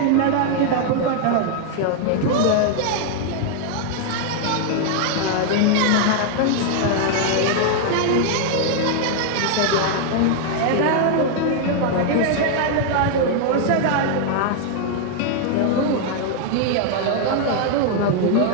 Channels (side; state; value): both; different; correlation 0.00